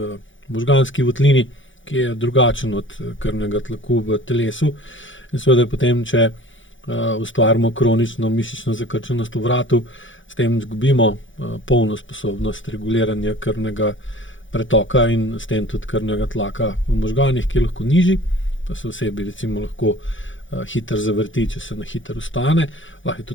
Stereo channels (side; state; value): right; late; 0.56 ms